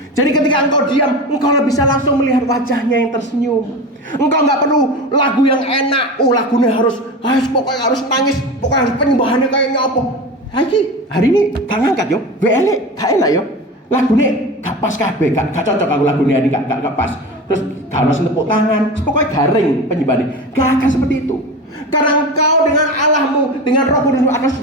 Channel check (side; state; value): both; normal; correlation 0.28